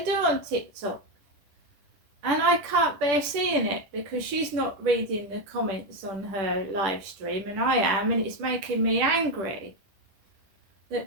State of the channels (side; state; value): left; late; 10 ms